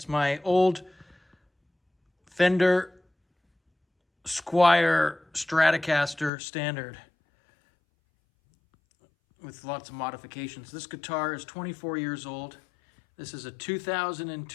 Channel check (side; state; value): right; drops out; at 6.3 s